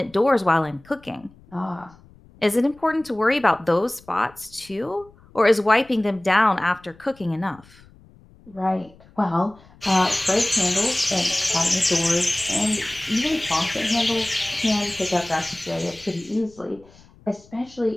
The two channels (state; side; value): noise; left; rumble, 26 dB below the sound